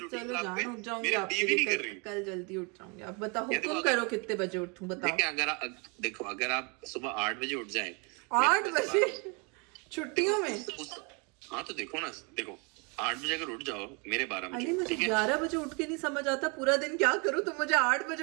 रूटीन खराब है, मेरी टीवी नहीं कर रही. कल जल्दी उठ जाऊंगी. अब बताओ हुक्म करो कितने बजे उठूं, बताओ. अगर आप सुबह 8 बजे उठ जाएं, 8 बजे छुट्टियों में. हाँ तो देखो 8 बजे अगर उठ जाओ, मेरे 12 बजे. मुझे 11 बजे उठ के नहीं समझ आता पूरा दिन क्या करूं. तुम मुझे 8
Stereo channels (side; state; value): left; quieter; 32.6 dB